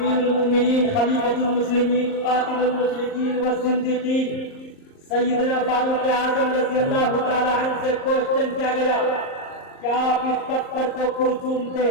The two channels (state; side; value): late; right; 38 ms